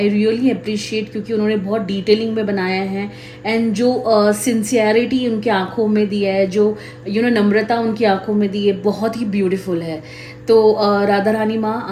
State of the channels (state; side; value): identical; both; correlation 1.00